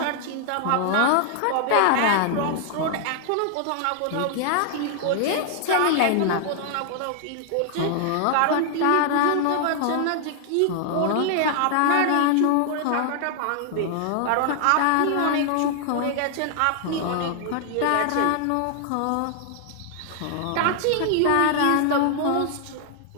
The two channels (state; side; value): different; both; correlation 0.00